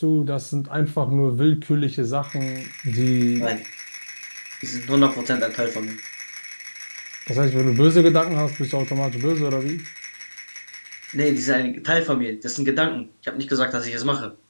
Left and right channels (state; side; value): inverted; both; correlation -1.00